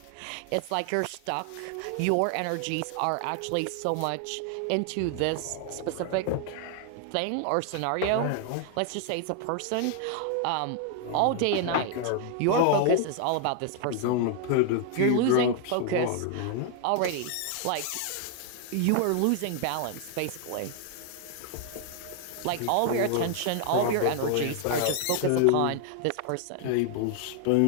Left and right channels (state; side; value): different; both; correlation 0.00